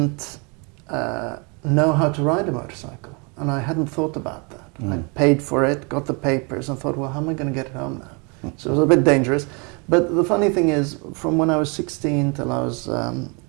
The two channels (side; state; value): left; quieter; 32.4 dB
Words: know how to ride a motorcycle, and I hadn't thought about that. I paid for it, got the papers, and thought, well, how am I going to get it home now? So it was a bit dangerous. But the funny thing is, from when I was 16 till